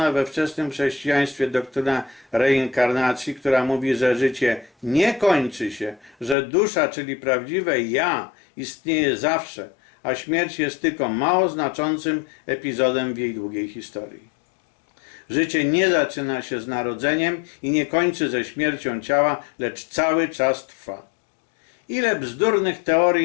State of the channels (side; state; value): right; drops out; at 6.4 s